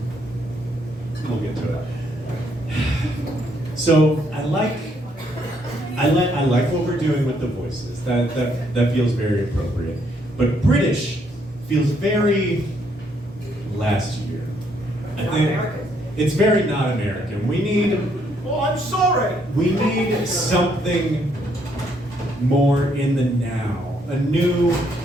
We'll get to it. So I like what we're doing with the voices. That feels very appropriate. But British feels very last year. I think it's very not American. We need Oh, I'm sorry. We need something more in the now. A new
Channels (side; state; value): both; normal; correlation 0.71